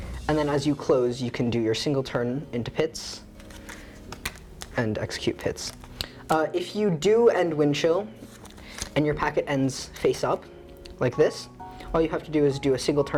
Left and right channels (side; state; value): both; identical; correlation 1.00